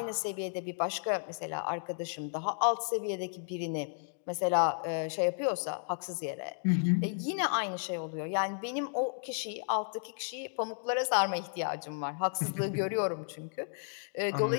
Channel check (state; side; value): silent; right; digital silence